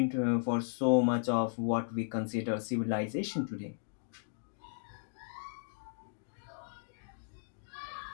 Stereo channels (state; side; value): silent; right; digital silence